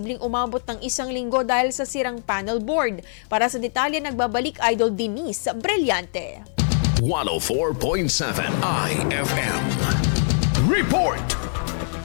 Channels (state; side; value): silent; right; digital silence